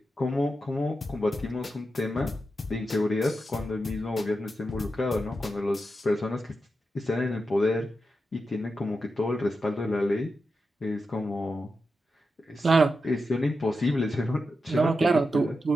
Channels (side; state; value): both; normal; correlation 0.88